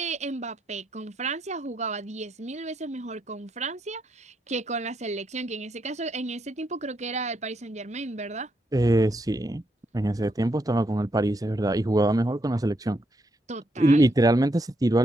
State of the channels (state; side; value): normal; both; correlation 0.78